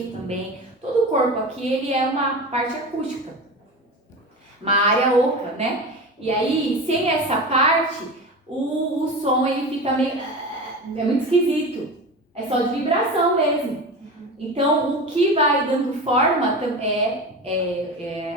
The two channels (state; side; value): normal; both; correlation 0.28